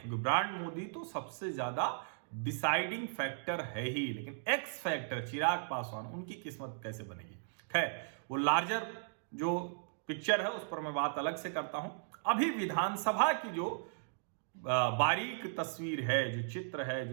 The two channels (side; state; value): left; silent; digital silence